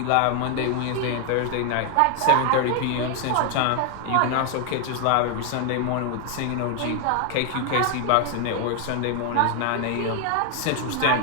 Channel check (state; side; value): different; both; correlation 0.00